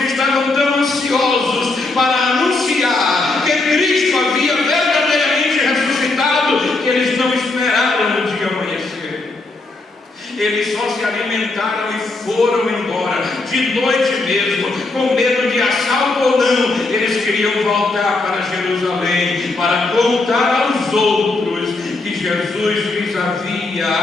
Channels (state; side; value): quieter; right; 3.3 dB